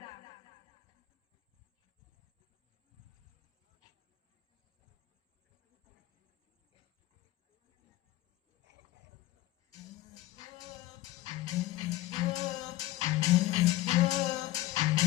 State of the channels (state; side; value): quieter; right; 16.4 dB